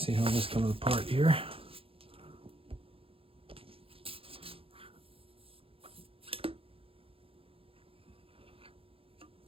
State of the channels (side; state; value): left; late; 0.27 ms